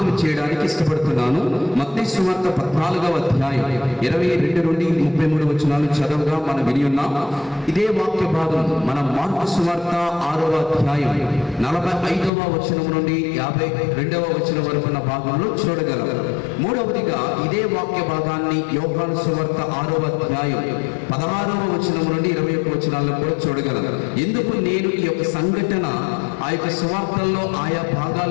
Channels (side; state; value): right; drops out; at 12.3 s